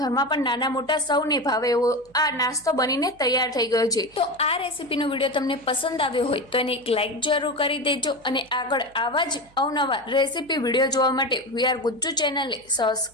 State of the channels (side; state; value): right; noise; hum, 29 dB below the sound